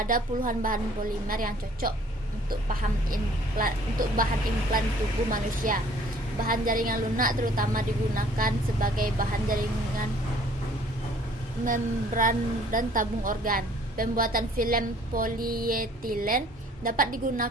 puluhan bahan polimer yang cocok untuk bahan implan tubuh manusia. Bahan jaringan lunak terutama digunakan sebagai bahan jaringan membran dan tabung organ. Pembuatan film polietilen dapat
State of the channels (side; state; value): both; normal; correlation 0.56